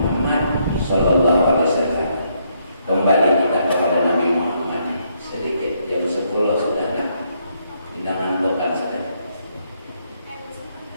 sallallahu alaihi wasallam. Kembali kita kepada Nabi Muhammad. Sedikit jam 10 sudah kan? Undangan tokan sudah.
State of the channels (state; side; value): inverted; both; correlation -0.74